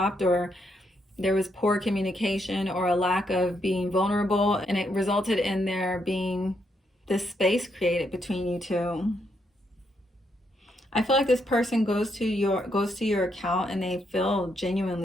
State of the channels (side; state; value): both; normal; correlation 0.77